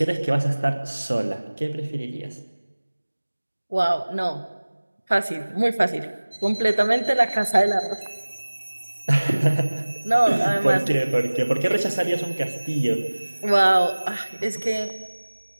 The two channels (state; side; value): inverted; both; correlation -1.00